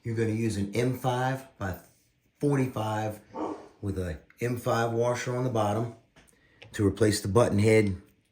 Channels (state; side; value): identical; both; correlation 1.00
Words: You're gonna use an M5 by 45 with a M5 washer on the bottom to replace the button head,